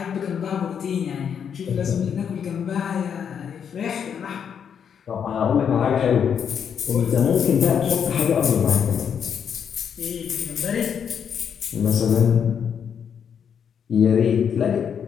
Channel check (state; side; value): quieter; right; 7.7 dB